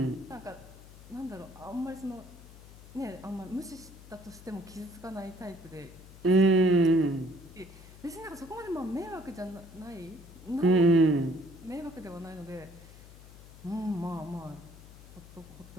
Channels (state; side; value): noise; left; hum, 18 dB below the sound